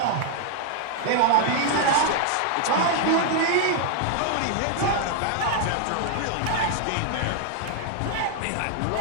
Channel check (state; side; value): different; both; correlation 0.00